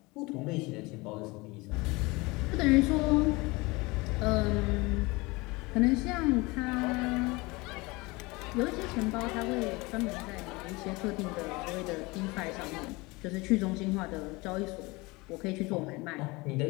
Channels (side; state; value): right; quieter; 24.0 dB